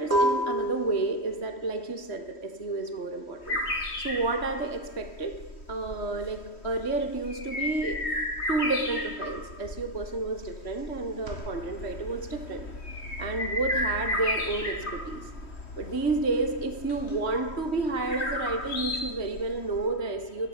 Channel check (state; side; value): late; right; 3.1 ms